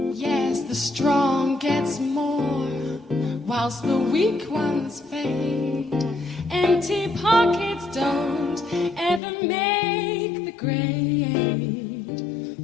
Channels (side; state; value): right; drops out; at 9.2 s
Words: Yes, the strong gets more, whilst the weak ones fade. Empty pockets don't ever make the grade.